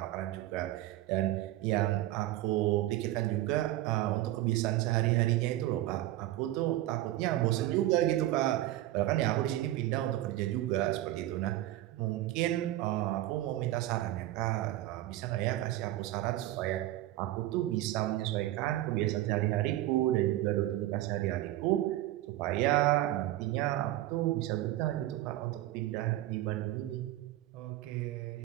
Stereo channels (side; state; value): left; quieter; 15.2 dB